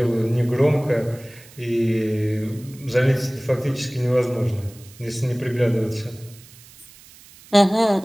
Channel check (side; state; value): right; noise; hiss, 23 dB below the sound